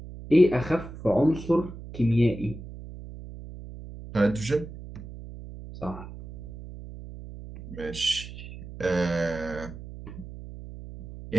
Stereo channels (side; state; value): right; noise; hum, 13 dB below the sound